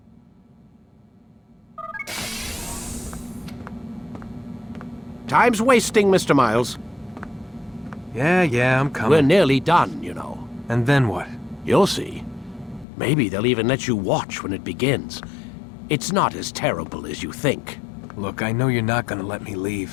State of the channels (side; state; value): right; drops out; at 12.9 s